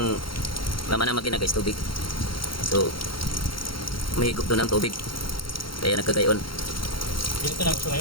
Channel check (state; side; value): late; right; 0.73 ms